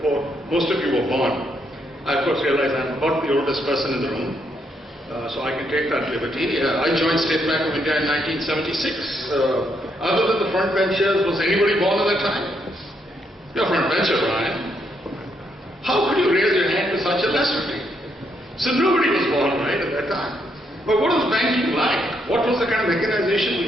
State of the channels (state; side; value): normal; both; correlation 0.76